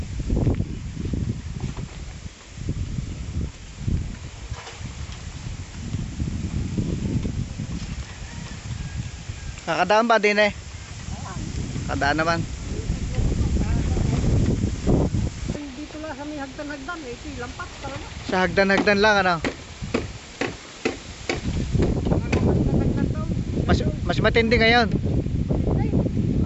Kakadaan ba din eh? Kakadaan naman. Dito lang sa may hagdan-hagdan eh. Ito yung lampas talaga. Sa hagdan-hagdan lang ano? Hagdan-hagdan daw. Mas matindi ngayon.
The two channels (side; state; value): both; identical; correlation 1.00